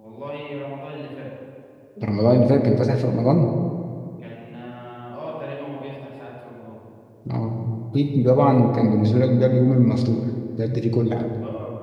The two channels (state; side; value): identical; both; correlation 1.00